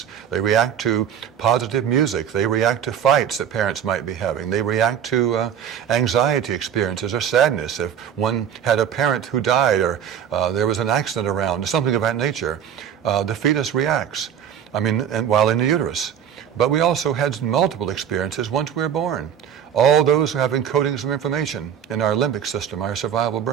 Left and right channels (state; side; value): quieter; left; 8.9 dB